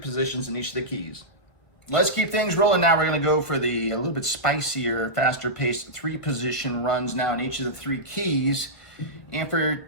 in each of the keys. Let's keep things rolling now. We're going to go for the a little bit spicier, faster paced three position runs now in each of the three keys. And for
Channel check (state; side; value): late; right; 1.5 ms